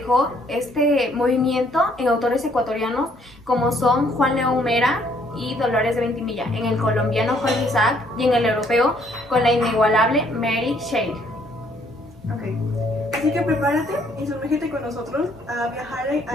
este movimiento en autores ecuatorianos como son Juan León Mera y Dolores de Ventimilla, en el colombiano Jorge Isaac y en el europeo con la inigualable Mary Shelley. Ok, así que prepárate y sumérgete con nosotros a viajar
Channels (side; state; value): both; normal; correlation 0.65